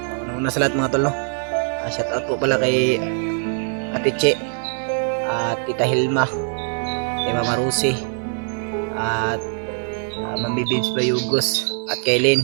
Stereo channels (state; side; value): silent; left; 58 dB below the other